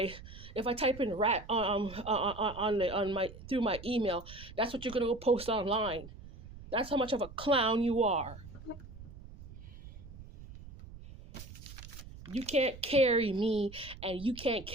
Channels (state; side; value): noise; right; rumble, 15 dB below the sound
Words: if I type in rat on my through my email, that's what you're gonna go post online. That's how much of a clown you are. You can't carry me, and you can't